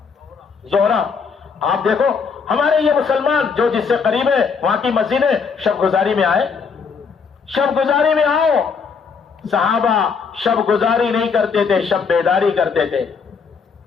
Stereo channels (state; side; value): quieter; right; 5.6 dB